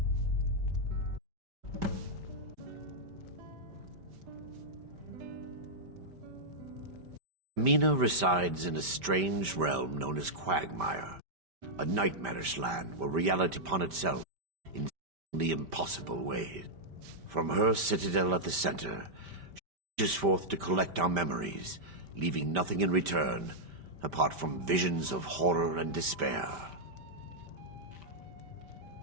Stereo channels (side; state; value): left; late; 5.1 ms